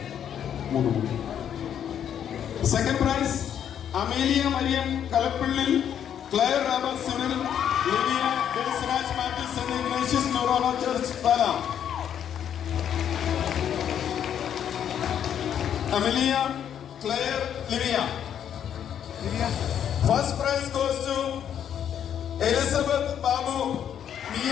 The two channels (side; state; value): right; quieter; 9.3 dB